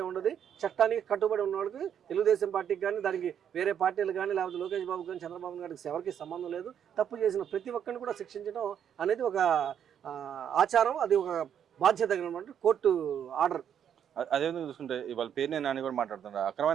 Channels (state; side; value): quieter; left; 8.9 dB